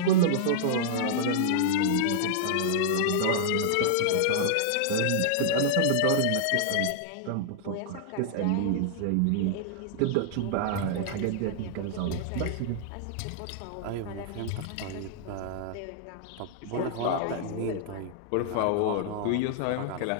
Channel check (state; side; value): different; both; correlation -0.01